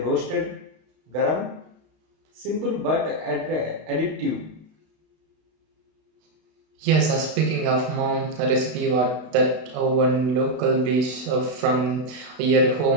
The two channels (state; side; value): late; left; 32 ms